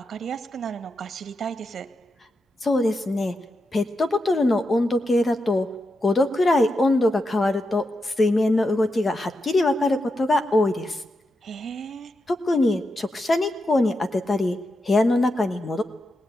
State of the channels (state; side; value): normal; both; correlation 0.86